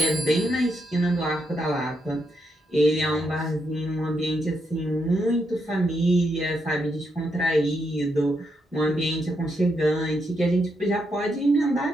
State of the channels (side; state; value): both; normal; correlation 0.80